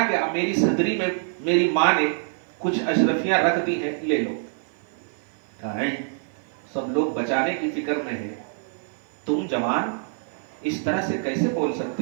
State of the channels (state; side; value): silent; left; 56 dB below the other